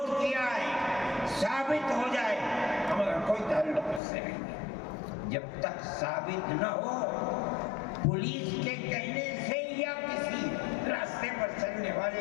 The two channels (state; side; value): drops out; right; at 4.0 s